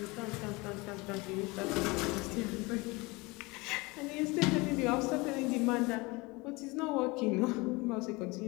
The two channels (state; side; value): quieter; right; 24.7 dB